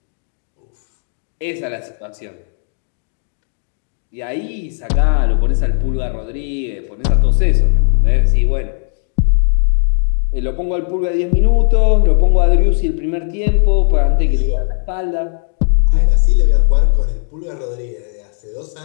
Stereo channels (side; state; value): right; silent; 59 dB below the other